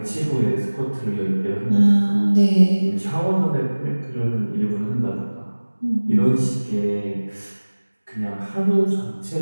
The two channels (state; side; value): inverted; both; correlation -1.00